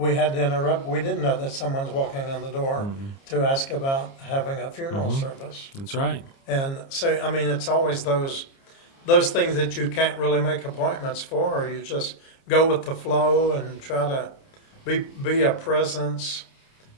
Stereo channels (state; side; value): late; right; 29 ms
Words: had to interrupt. We didn't know that someone's walking in the door to ask about having a funeral service. That's right. And so, I mean, it's always those things that you can't really make appointments for, or you just go with the flow and try to be a presence